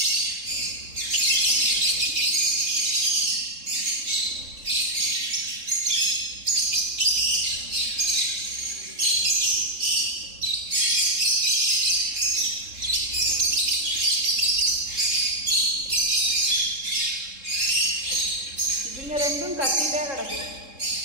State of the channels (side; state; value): left; late; 3.7 ms